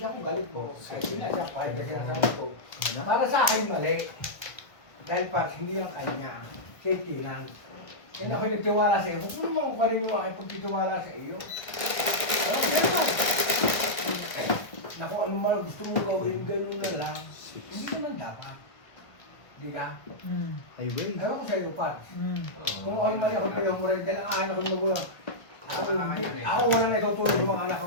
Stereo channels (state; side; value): late; right; 1.4 ms